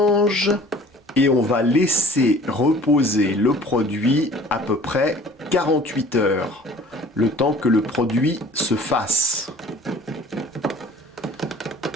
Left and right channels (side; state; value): both; normal; correlation 0.49